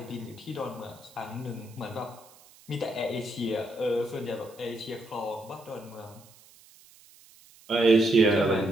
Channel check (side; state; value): right; noise; hiss, 25 dB below the sound